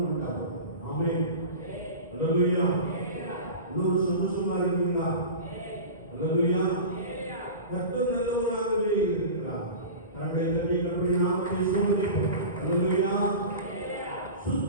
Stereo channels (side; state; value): both; inverted; correlation -0.32